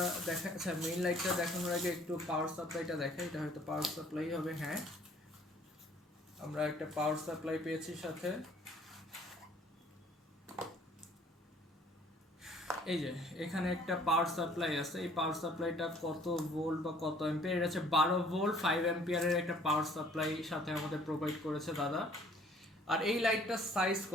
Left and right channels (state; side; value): normal; both; correlation 0.57